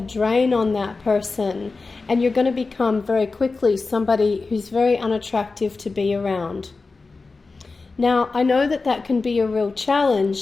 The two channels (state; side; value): quieter; right; 3.9 dB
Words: drain on that person, and you're going to become very quickly somebody who's very unattractive to be around. Now, I know that that can be a real